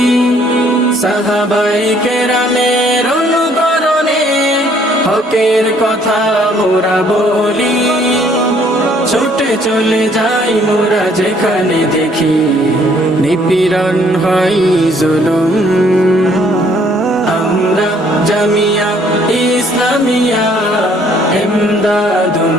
সাহাবায়ে কেরামের অনুকরণে হকের কথা মোরা বলি ছুটে চলে যাই মোরা যেখানে দেখি নিপীড়ন হয় জুলুম আমরা জামিয়া ইসলামিয়া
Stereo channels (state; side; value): normal; both; correlation 0.63